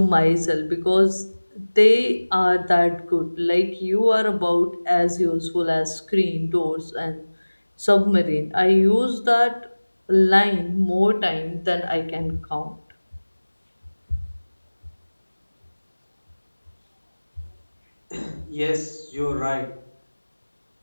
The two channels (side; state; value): both; inverted; correlation -1.00